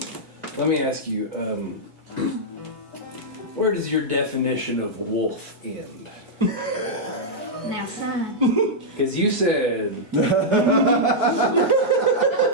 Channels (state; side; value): normal; both; correlation -0.07